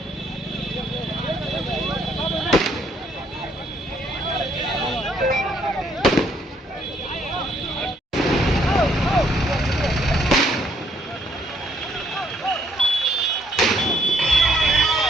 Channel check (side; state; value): both; normal; correlation 0.68